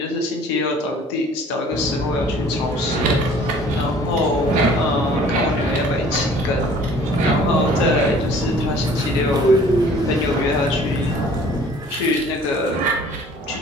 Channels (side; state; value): both; normal; correlation 0.52